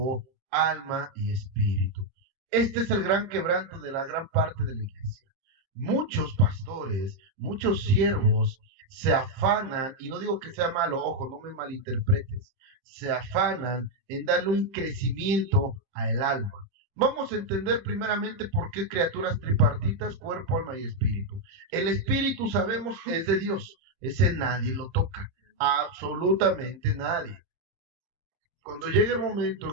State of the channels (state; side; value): late; left; 31 ms